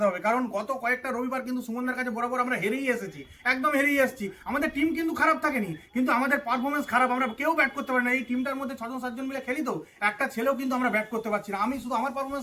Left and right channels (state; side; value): identical; both; correlation 1.00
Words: হবে। কারণ গত কয়েকটা রবিবার কিন্তু সুমননার কাছে বরাবর আমরা হেরেই এসেছি, একদম হেরেই এসেছি। আমাদের টিম কিন্তু খারাপ থাকেনি, কিন্তু আমাদের পারফরমেন্স খারাপ, আমরা কেউ ব্যাট করতে পারি না। এই টিমটার মধ্যে 6-7 জন মিলে খেলি, তো একটা ছেলেও কিন্তু আমরা ব্যাট করতে পারছি না। আমি শুধু আমার